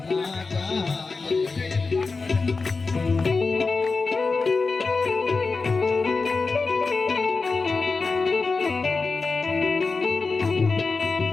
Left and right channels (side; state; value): right; quieter; 4.2 dB